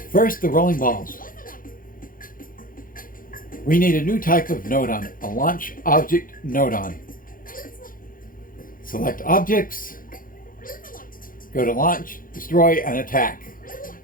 First, the rolling balls. We need a new type of nodon, a launch object nodon. Select objects, go to launch, destroy, and attack.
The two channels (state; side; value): late; right; 0.40 ms